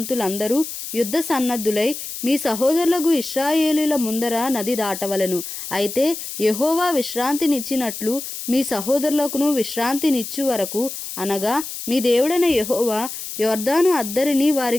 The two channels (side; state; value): left; noise; hiss, 8 dB below the sound